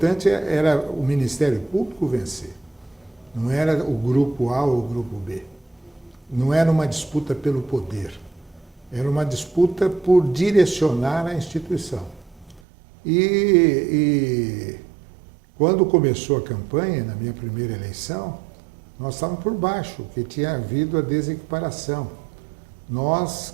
era o Ministério Público vencer. Não era o grupo A ou o grupo B. Não era uma disputa pelo poder. Era uma disputa por direcionar a instituição. E quando começou a campanha, na minha primeira eleição, nós estávamos por baixo, porque tinha havido a desequiparação. Nós,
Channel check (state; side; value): drops out; left; at 12.6 s